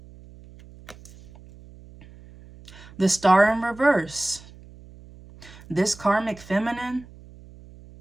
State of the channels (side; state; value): right; noise; hum, 21 dB below the sound